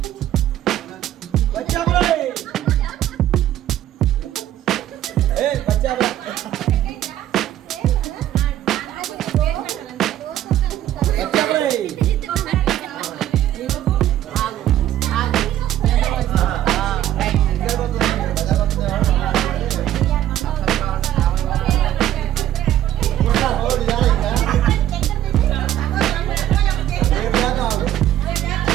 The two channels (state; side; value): quieter; left; 12.4 dB